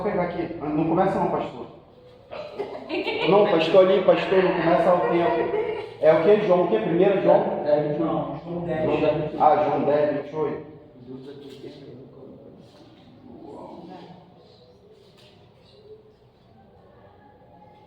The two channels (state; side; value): identical; both; correlation 1.00